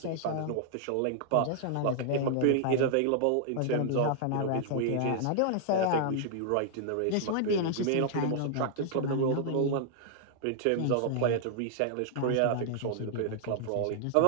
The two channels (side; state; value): both; different; correlation -0.01